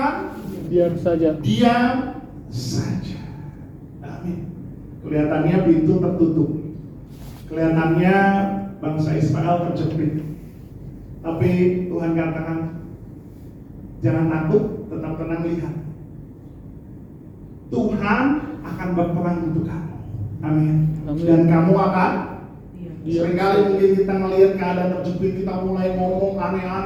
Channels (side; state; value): both; identical; correlation 1.00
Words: diam saja. Diam saja. Amin. Kelihatannya pintu tertutup. Kelihatannya bangsa Israel terjepit. Tapi Tuhan katakan, jangan takut, tetap tenang, lihat. Tuhan akan berperang untuk kamu. Amin. Amin. Dan kamu akan Diam. seringkali mungkin kita melihat keadaan terjepit, kita mulai ngomong